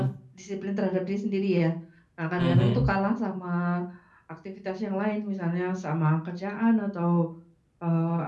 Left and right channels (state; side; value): identical; both; correlation 1.00